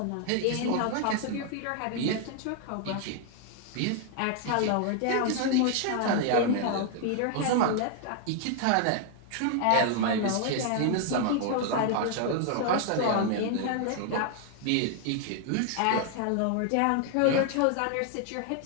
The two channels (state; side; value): different; both; correlation 0.00